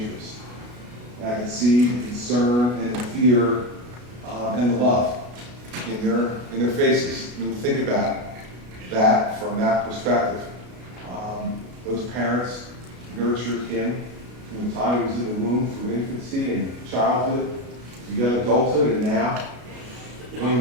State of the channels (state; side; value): late; left; 33 ms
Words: And I could see the concern and the fear and the love in their faces. I mean, think about that from that perspective. Those parents nurtured him from the time he was in the womb through infancy and childhood to young adulthood, and now one of